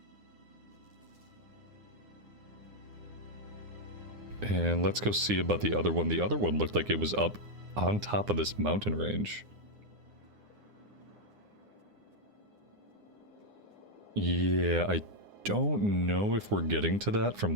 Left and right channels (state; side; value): late; left; 9.8 ms